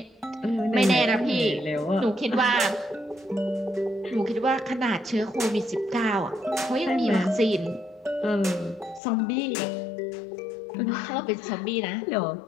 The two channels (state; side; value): drops out; right; at 9.0 s